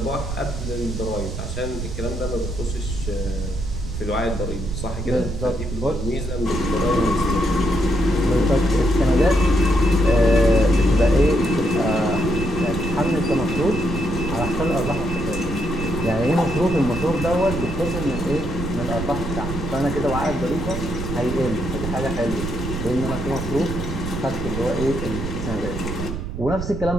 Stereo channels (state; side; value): noise; right; rumble, 6 dB below the sound